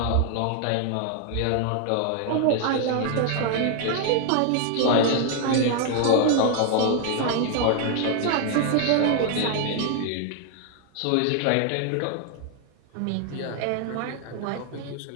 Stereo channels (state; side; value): different; both; correlation 0.00